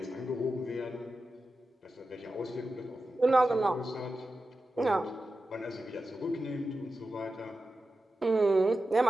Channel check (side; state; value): both; normal; correlation 0.92